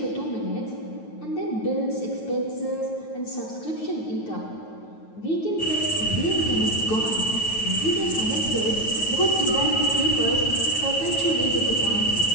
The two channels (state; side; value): late; right; 9.3 ms